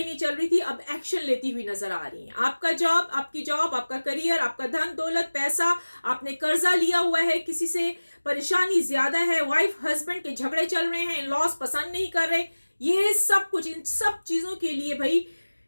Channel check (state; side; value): inverted; both; correlation -1.00